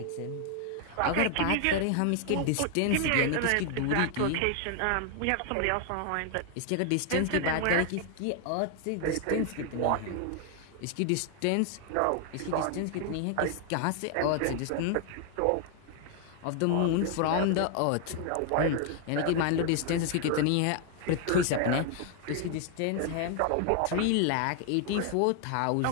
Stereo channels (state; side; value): different; both; correlation 0.00